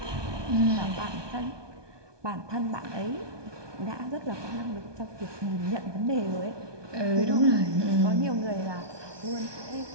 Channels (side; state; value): left; late; 1.2 ms